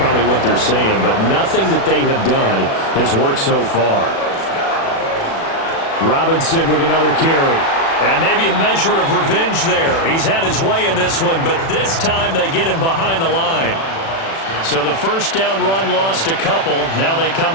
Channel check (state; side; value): late; right; 36 ms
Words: what they're saying. But nothing that they have done has worked so far. Robinson with another carry. And maybe a measure of revenge there. He's had his way in this one, but this time they get him behind the line. So the 1st down run lost a couple. Now they come